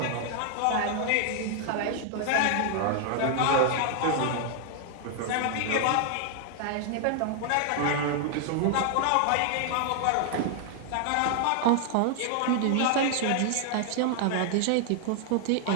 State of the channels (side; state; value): both; different; correlation 0.00